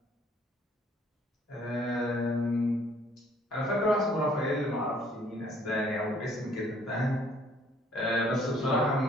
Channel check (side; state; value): both; normal; correlation 0.61